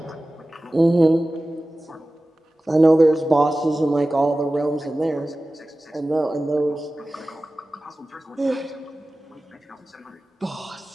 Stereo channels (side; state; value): both; normal; correlation 0.96